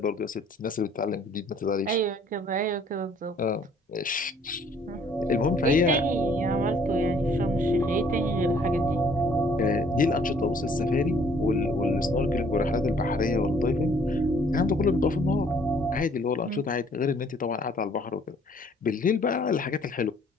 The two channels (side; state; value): both; normal; correlation 0.60